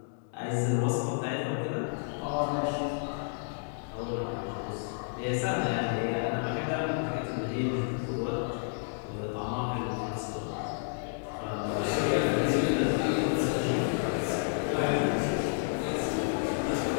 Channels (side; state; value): right; silent; digital silence